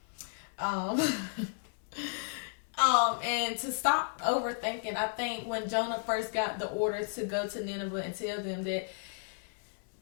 And to stop overthinking, I think when Jonah first got the order to go to Nineveh and tell them that,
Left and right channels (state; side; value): silent; right; 55 dB below the other